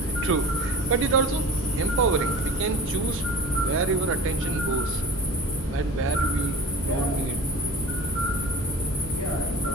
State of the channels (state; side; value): normal; both; correlation 0.39